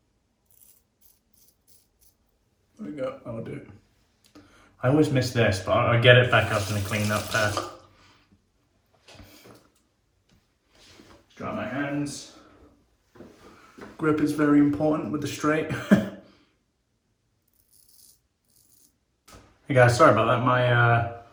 There we go, that'll do. I always miss this, but I'll get it back up in a clean up pass. Dry my hands. Grip is very important with the straight. Hey guys, sorry about that.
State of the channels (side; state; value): both; identical; correlation 1.00